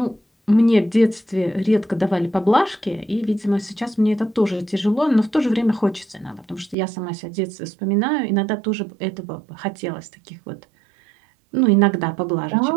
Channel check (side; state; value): left; drops out; at 6.8 s